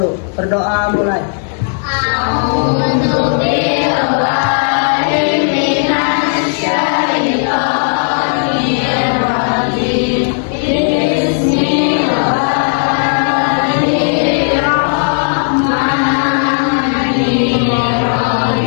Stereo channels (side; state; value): right; silent; 69 dB below the other